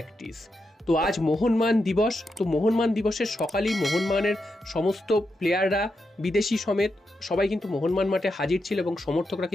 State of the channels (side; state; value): both; normal; correlation 0.85